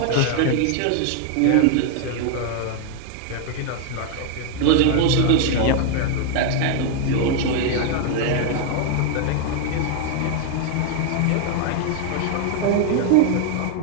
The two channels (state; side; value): different; both; correlation 0.00